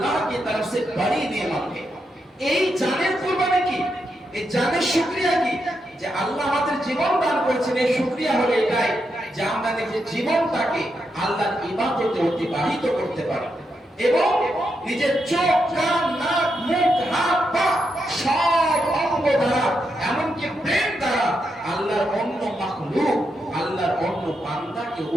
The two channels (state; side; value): normal; both; correlation 0.83